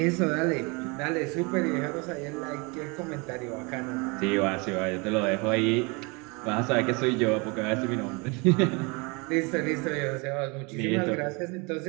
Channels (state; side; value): quieter; left; 29.1 dB